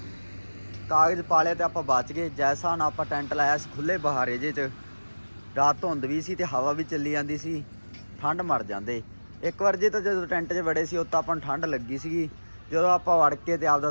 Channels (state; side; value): inverted; both; correlation -1.00